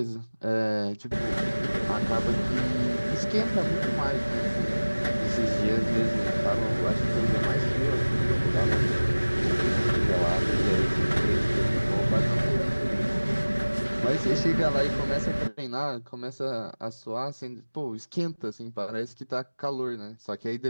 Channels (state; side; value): inverted; both; correlation -1.00